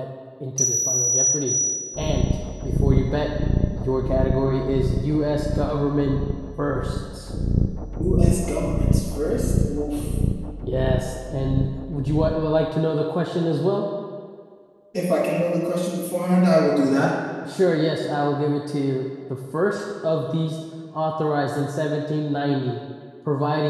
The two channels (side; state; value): both; identical; correlation 1.00